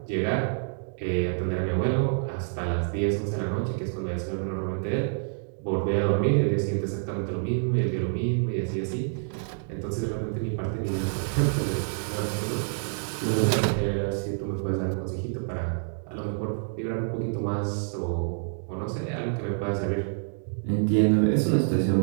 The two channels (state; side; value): silent; left; digital silence